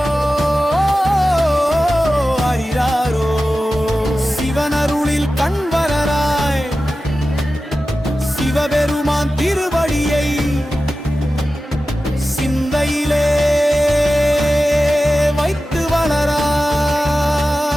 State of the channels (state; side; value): normal; both; correlation 0.94